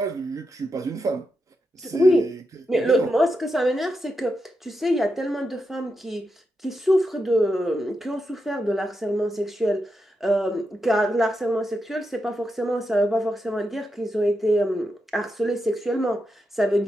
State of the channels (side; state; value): both; normal; correlation 0.86